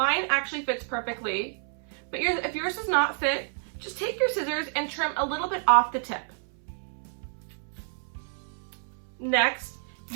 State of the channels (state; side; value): silent; left; 59 dB below the other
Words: actually fits perfectly, but if yours does not fit, just take your scissors and trim a little bit off the tip. Next,